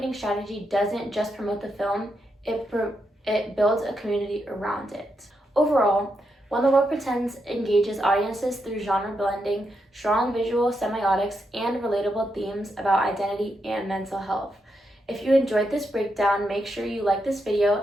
strategy doesn't just promote the film, it builds a community around it. Overall, When the World Pretends engages audiences through genre blending, strong visual semiotics, and relatable themes about identity and mental health. If you enjoyed this breakdown, make sure you like this video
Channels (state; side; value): normal; both; correlation 0.83